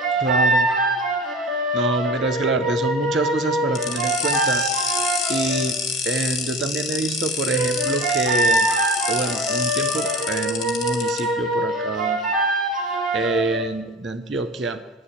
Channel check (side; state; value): both; normal; correlation 0.33